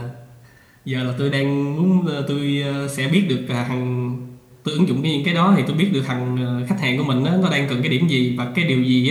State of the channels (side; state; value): both; identical; correlation 1.00